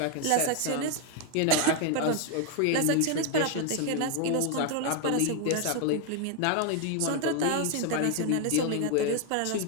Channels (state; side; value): different; both; correlation 0.01